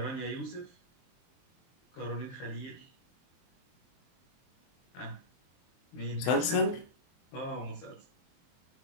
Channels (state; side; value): late; right; 23 ms